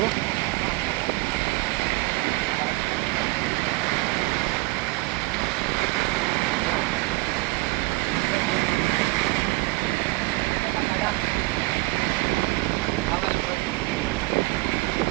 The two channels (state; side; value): quieter; left; 25.1 dB